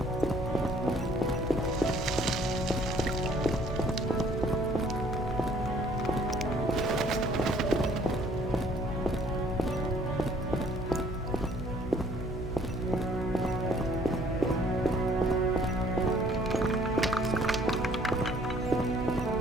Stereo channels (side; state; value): both; normal; correlation 0.59